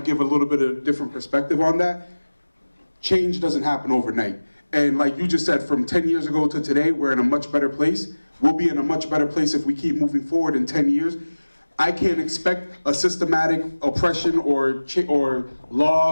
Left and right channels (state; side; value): inverted; both; correlation -1.00